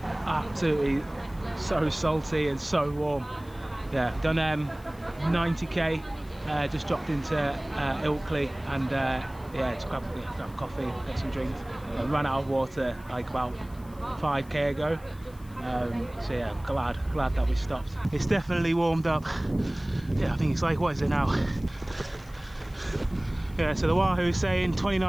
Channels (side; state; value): left; noise; hiss, 26 dB below the sound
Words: Absolutely so salty and so warm. Yeah, done 90k, just dropped into Ilkley and yeah, just grab coffee, get some drinks. Ran out of water like about 5k ago. So yeah, glad that we stopped. It's definitely warmed up. Yeah, I think it's like, what is it now? Yeah, so the Wahoo's saying